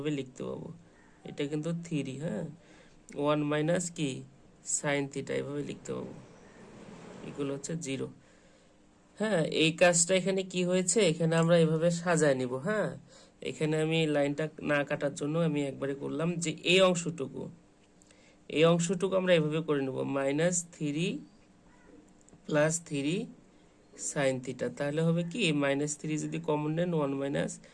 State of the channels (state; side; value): identical; both; correlation 1.00